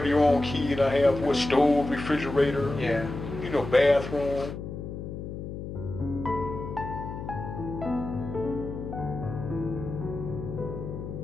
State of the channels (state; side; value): noise; left; hum, 8 dB below the sound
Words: your own key, and I have stove, refrigerator, bathroom.